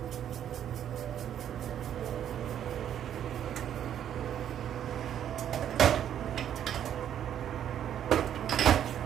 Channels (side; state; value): left; quieter; 10.0 dB